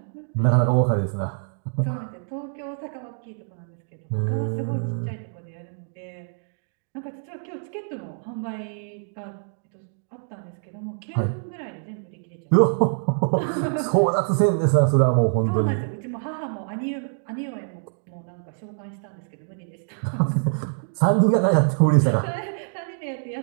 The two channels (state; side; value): silent; left; digital silence